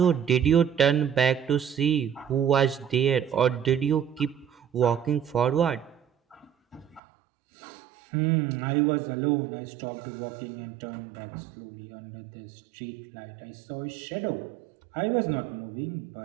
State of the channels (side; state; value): left; drops out; at 7.0 s